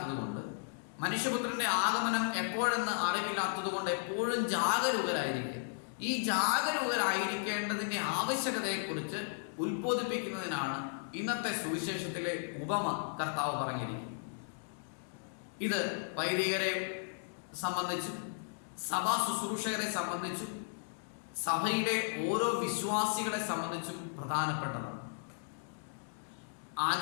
കൊണ്ട്, മനുഷ്യപുത്രന്റെ ആഗമനം എപ്പോഴെന്ന് അറിവില്ലാത്തത് കൊണ്ട് എപ്പോഴും ജാഗരൂകരായിരിക്കുക. ഈ ജാഗരൂകരായിരിക്കേണ്ടതിന്റെ ആവശ്യകതയെക്കുറിച്ച് ഉത്ബോധിപ്പിക്കുന്നതിനാണ് ഇന്നത്തെ സുവിശേഷത്തിലെ ഉപമ കർത്താവ് പറഞ്ഞിരിക്കുന്നത്. ഇത് വൈദികരെ സംബന്ധിച്ചും സഭാ ശുശ്രൂഷകരെ സംബന്ധിച്ചും സഭയിലെ ഓരോ വിശ്വാസികളെ സംബന്ധിച്ചും പ്രധാനപ്പെട്ടതാണ്.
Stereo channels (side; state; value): right; silent; digital silence